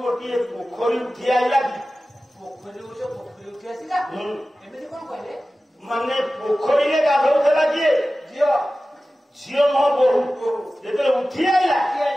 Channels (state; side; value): normal; both; correlation 0.96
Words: ଗୋଟିଏ ପୋଖରୀ ଉଠି ଆଇଲା କି ପୋଖରୀ ଉଠି ଆସିଲା ଏମିତି କଣ କହିଲେ ମାନେ ପୋଖରୀରେ ଗାଧଉଥିଲା କିଏ ଝିଅ ନୁହଁ ବୋହୁ ଯେତେବେଳେ ଉଠି ଆଇଲା